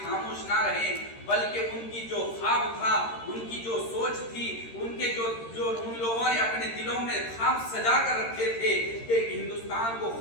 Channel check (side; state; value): right; late; 13 ms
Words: خاموش نہ رہیں، بلکہ ان کی جو خواب تھا، ان کی جو سوچ تھی، ان کے جو ان لوگوں نے اپنے دلوں میں خواب سجا کر رکھے تھے کہ ہندوستان کو